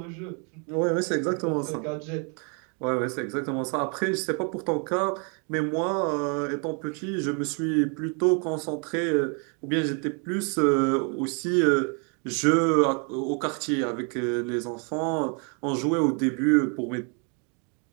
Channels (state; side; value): quieter; left; 37.6 dB